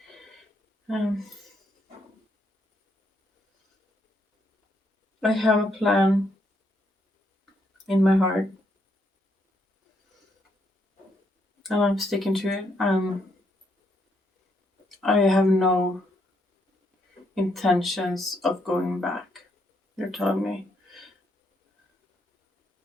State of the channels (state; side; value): normal; both; correlation 0.75